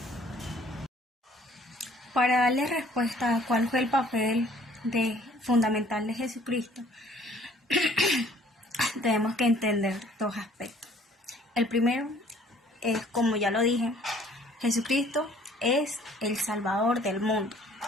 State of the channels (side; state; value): both; normal; correlation 0.57